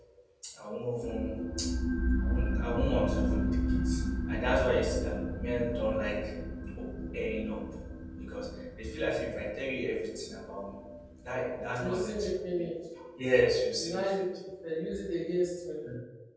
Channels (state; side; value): identical; both; correlation 1.00